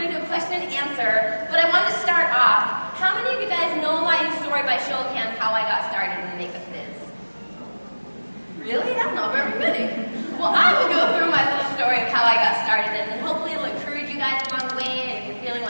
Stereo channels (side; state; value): both; inverted; correlation -1.00